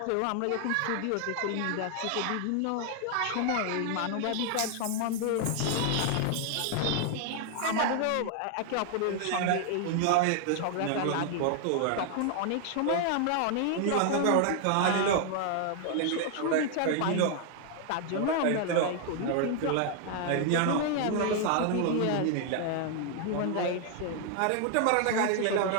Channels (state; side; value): different; both; correlation 0.00